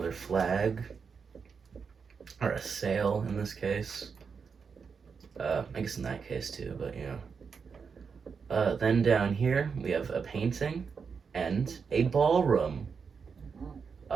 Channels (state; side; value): quieter; left; 5.8 dB